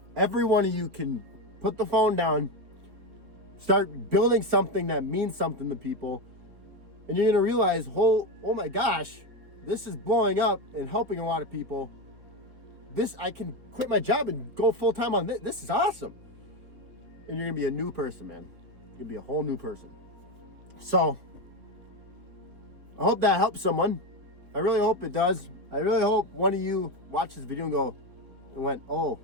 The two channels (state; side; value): late; left; 4.4 ms